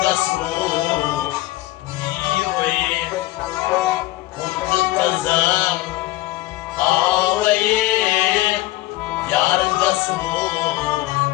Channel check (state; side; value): quieter; right; 17.9 dB